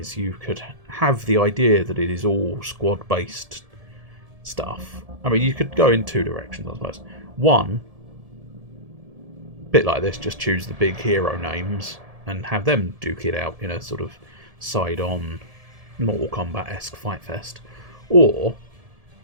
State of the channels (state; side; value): late; left; 1.7 ms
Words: you could have the idea that it is all squad-based stuff. I mean, you could go in two directions, I suppose. One, bit like this, just choose the big hero names and have them duke it out in a sort of side-on Mortal Kombat-esque fight fest. Or,